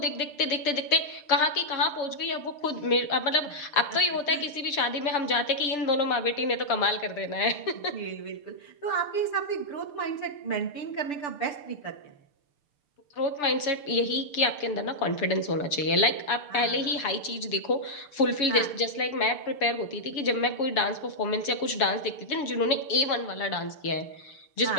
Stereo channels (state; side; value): late; right; 7.3 ms